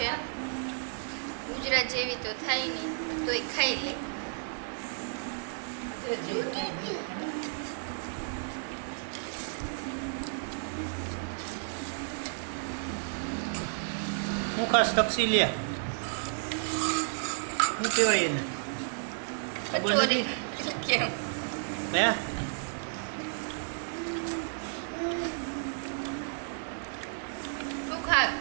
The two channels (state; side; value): silent; left; digital silence